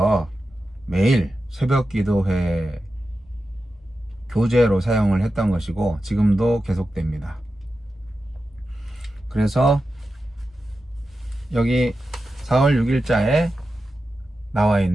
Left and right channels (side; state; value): both; normal; correlation 0.91